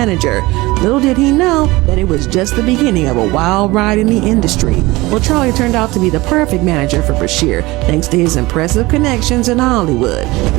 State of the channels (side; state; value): left; quieter; 20.9 dB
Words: Little did he know that it was just the beginning of a wild ride in the industry. Well, Charlie turned out to be the perfect manager for Bashir, thanks to his impressive connections in Hollywood.